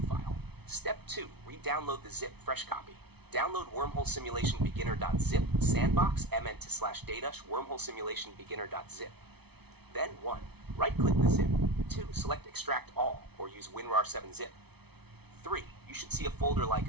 file. Step 2. Re-download the zip fresh copy. Download Wormhole Simulation Beginner.zip sandbox mnt/data wormhole simulation beginner.zip. Then 1. Right-click the zip. 2. Select Extract All or use WinRAR7-zip. 3. You should see a folder like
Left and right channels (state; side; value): late; left; 0.98 ms